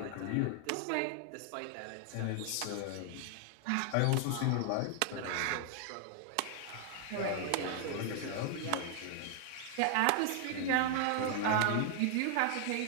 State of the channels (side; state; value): both; different; correlation 0.00